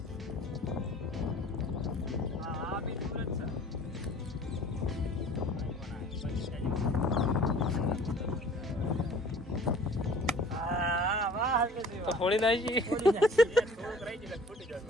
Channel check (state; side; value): normal; both; correlation 0.48